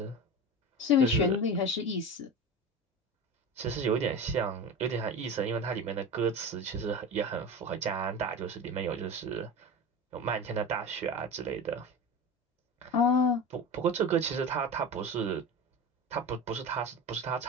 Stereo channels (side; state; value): both; normal; correlation 0.28